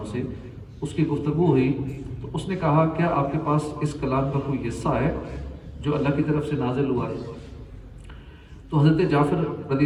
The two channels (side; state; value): both; identical; correlation 1.00